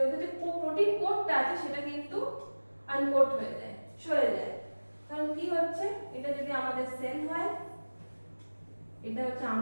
কোডটা আছে, সেটা কিন্তু আনকোড হয়ে যায়, সরে যায়। কারণ কি হচ্ছে, এটা যদি আমাদের সেল হয়, এটা হচ্ছে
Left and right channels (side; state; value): both; inverted; correlation -1.00